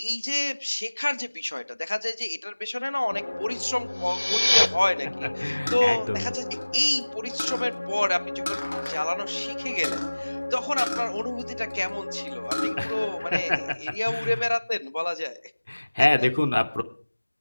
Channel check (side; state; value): both; inverted; correlation -1.00